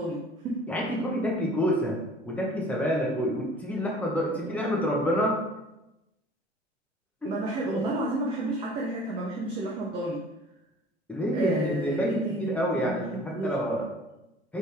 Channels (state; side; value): normal; both; correlation 0.48